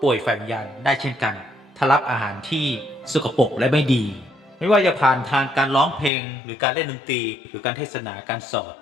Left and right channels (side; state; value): right; drops out; at 6.1 s